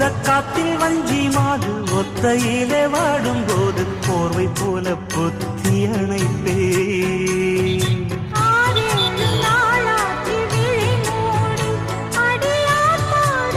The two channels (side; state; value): both; identical; correlation 1.00